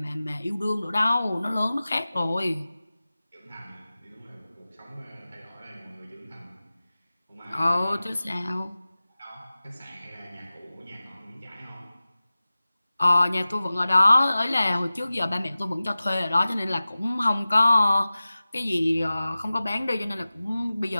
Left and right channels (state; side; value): inverted; both; correlation -0.97